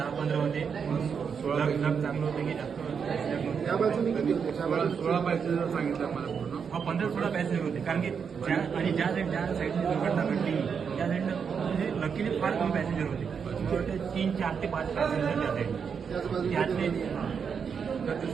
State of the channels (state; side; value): quieter; left; 6.5 dB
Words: होते. 16 चांगलं होतं की जास्त त्या बाजूने किती होते 16 पॅसेंजर सांगितलं आम्हाला पूर्ण 15-16 पॅसेंजर होते. कारण की ज्या साईडने दुर्घटना घडली त्या साईडनं म्हणजे लकीली फार कमी पॅसेंजर होते. मला वाटतं 3, 4 ते 5 पॅसेंजर त्या साईडने त्यातले त्याचे